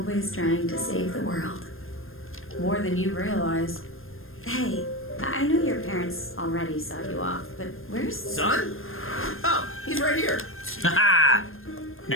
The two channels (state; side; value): late; right; 0.60 ms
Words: trying to save the world. More than you realize. Hey, I know your parents already saw you off, but where's... Son? Oh, he's right here. Haha!